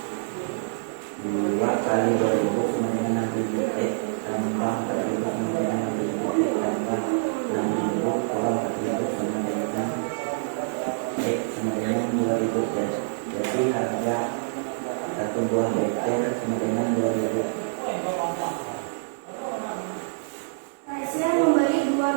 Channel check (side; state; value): left; silent; digital silence